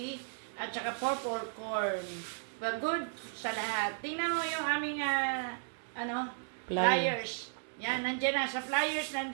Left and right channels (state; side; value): silent; left; digital silence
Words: at saka purple corn. But good sa lahat. Tingnan mo yung aming flyers. Yan, nandyan na. Sa flyers,